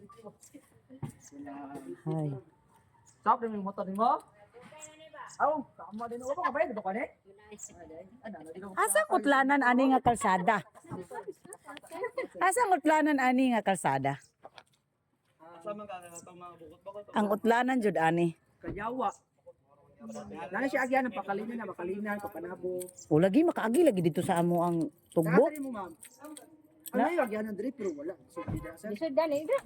Ay. Stop din yung motor mo. Aw, tama din ako ba? Dito ka ni? Asa kutlanan ani nga kalsada? Asa kutlanan ani nga kalsada? Ang utlanan jud ani. Kayawa. Nana siya agyan ng pakalinan, papanabo. O lagi makaagi lagi dito sa amo ang tugbo. Nakatali mo ma'am. Ano yung agyan ng drip pero wala. So, tidak sir. Bisod dali.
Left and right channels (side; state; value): both; identical; correlation 1.00